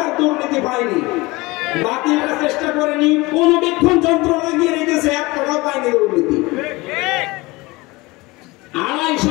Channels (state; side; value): quieter; right; 22.4 dB